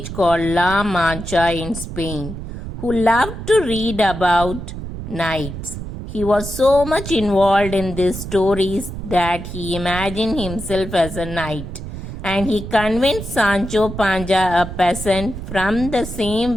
called La Mancha in Spain who loved to read about knights. He was so much involved in these stories that he imagined himself as a knight, and he convinced Sancho Panza, a peasant from the same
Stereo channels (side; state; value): right; noise; rumble, 9 dB below the sound